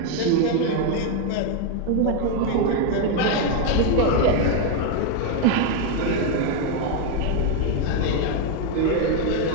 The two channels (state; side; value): different; both; correlation 0.01